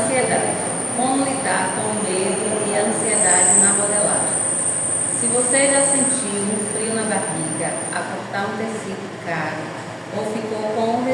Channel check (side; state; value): both; identical; correlation 1.00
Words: Como lidar com o medo e a ansiedade na modelagem. Se você já sentiu um frio na barriga, a cortar um tecido caro, ou ficou com o